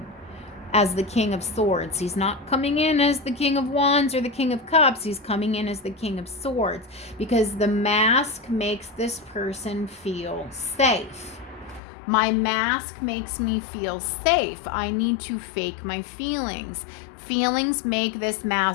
As the King of Swords. He's not coming in as the King of Wands or the King of Cups. He's coming in as the King of Swords, because the mask makes this person feel safe. My mask makes me feel safe. I need to fake my feelings. Feelings make this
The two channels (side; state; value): right; drops out; at 11.8 s